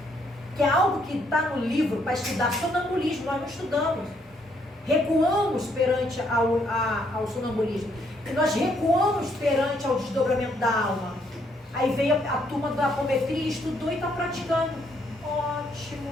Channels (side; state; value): both; normal; correlation 0.71